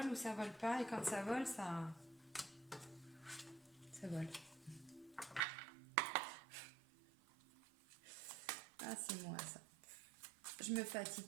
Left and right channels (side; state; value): left; drops out; at 5.4 s